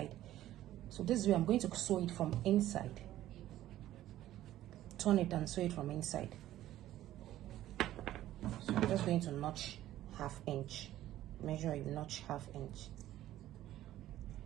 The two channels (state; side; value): quieter; left; 13.7 dB